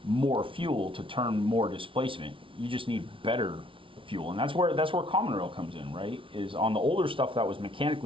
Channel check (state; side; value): late; left; 0.25 ms